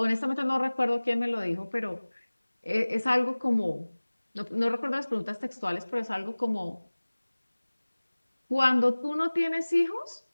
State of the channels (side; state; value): both; inverted; correlation -1.00